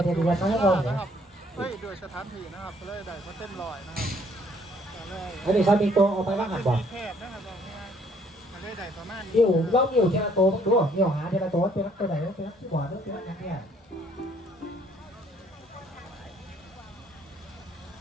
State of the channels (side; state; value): both; normal; correlation 0.63